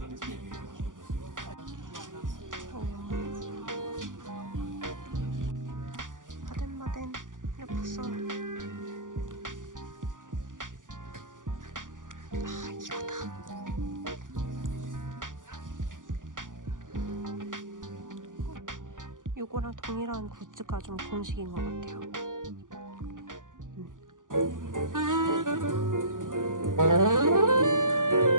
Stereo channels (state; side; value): late; left; 0.88 ms